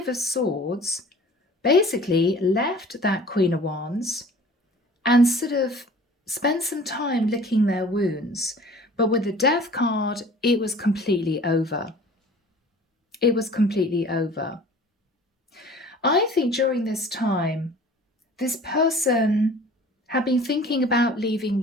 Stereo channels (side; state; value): both; normal; correlation 0.47